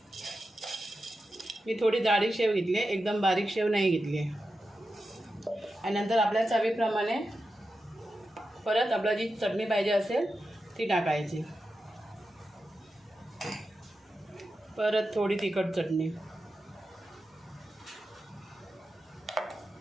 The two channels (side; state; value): both; normal; correlation 0.90